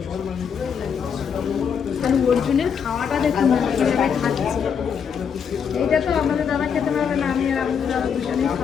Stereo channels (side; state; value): right; quieter; 7.1 dB